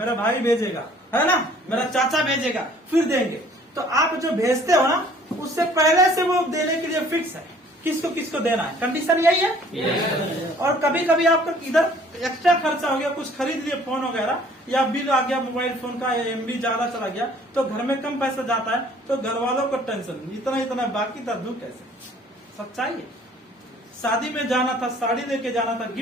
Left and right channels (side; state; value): both; normal; correlation 0.56